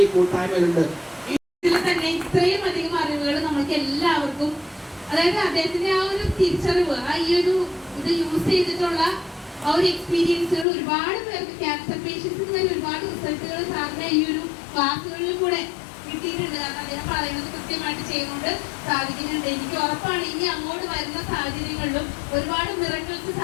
ഈ കൂട്ടായ്മയിലുണ്ട്. ഇതിൽ തന്നെ ഇത്രയും അധികം അറിവുകൾ നമുക്ക് എല്ലാവർക്കും, അതായത് അദ്ദേഹത്തിന്റെ ആ ഒരു തിരിച്ചറിവ്, ആ ഈ ഒരു ഇത് യൂസ് ചെയ്തിട്ടുള്ള ആ ഒരു എക്സ്പീരിയൻസുകൾ ഒരുപാട് പേർക്ക്, ക്യാൻസർ പേഷ്യൻസിന് വരെ ഒരുപാട് റിസൾട്ടുകൾ സാറിന്റെ ഈ ഒരു ക്ലാസ്സുകളിൽ കൂടെ കിട്ടിയിട്ടുണ്ട്. കാരണം അദ്ദേഹം പറയുന്നത് കൃത്യമായിട്ട് ചെയ്യുകൊണ്ട് സാധിക്കുന്നുണ്ട്. എനിക്ക് ഉറപ്പാണ് ഇനി അങ്ങോട്ട് വരുന്ന സാഹചര്യങ്ങളിലും ഒരുപാട് മിറക്കിൾസ്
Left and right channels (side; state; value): right; drops out; at 10.7 s